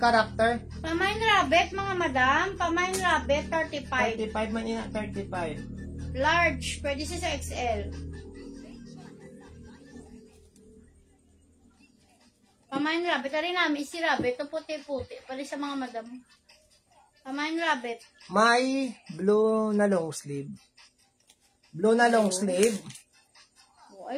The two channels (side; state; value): both; identical; correlation 1.00